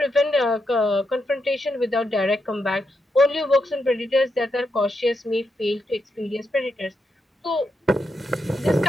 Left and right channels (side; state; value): both; normal; correlation 0.83